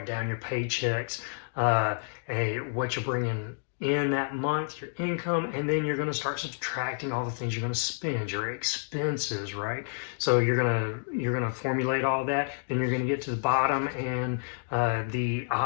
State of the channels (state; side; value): silent; right; digital silence